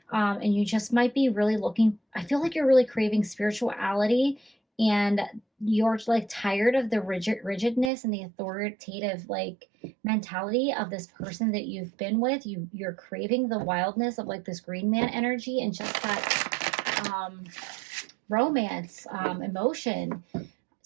And you just might be really looking, I feel like you're really craving spirituality, and you're like tired of the rigidness and the authoritative like mentality of this person that you've been with. You're craving the wildness of like this green man energy and just that romance, emotion,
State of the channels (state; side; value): drops out; left; at 7.9 s